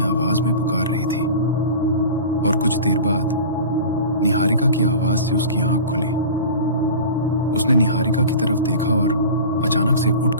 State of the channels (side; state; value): both; inverted; correlation -0.36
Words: आवाज में पुकार रही थी और कुछ देर बाद निहारिका की आवाज से उसकी आंख खुली। उसने निहारिका की तरफ देखा और अचानक से उठ